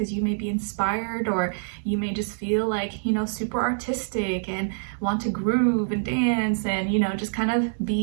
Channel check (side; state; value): left; silent; 61 dB below the other